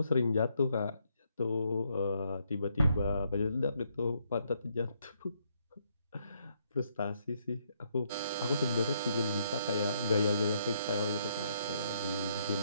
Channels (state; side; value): inverted; both; correlation -0.74